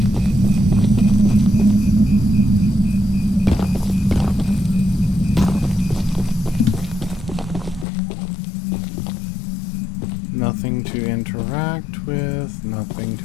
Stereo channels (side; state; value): right; drops out; at 7.9 s